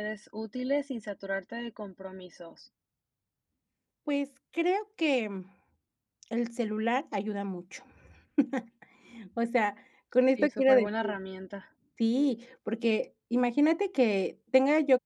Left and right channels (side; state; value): both; identical; correlation 1.00